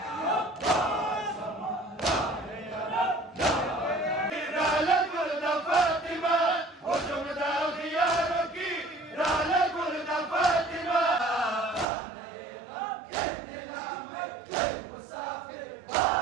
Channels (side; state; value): left; drops out; at 11.9 s